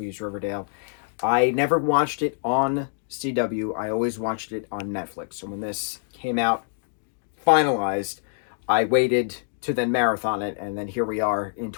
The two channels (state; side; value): silent; right; digital silence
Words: Riverdale. I never watched it on CW. I always watched it on Netflix. So when this came out, finalized, I waited to then marathon it, and then here we are in